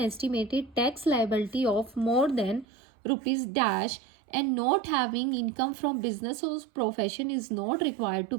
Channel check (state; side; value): drops out; left; at 2.7 s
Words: tax liability of more than rupees dash and not having income from business or profession is not required to